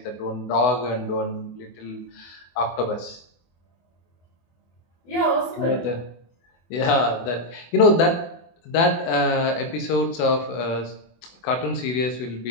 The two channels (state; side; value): late; right; 24 ms